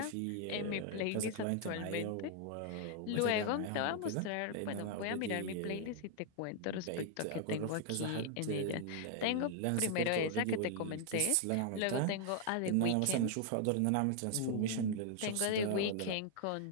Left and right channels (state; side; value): different; both; correlation 0.00